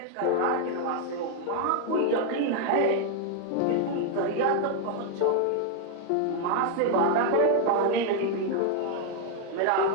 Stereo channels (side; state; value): both; different; correlation 0.00